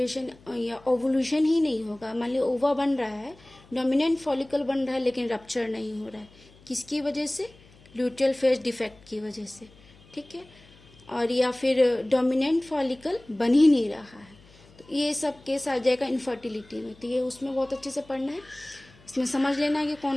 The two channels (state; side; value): noise; left; hum, 26 dB below the sound